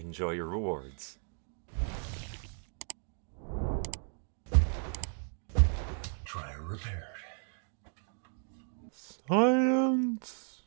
your rewards. Dryer repaired. Science.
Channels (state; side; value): silent; left; 55 dB below the other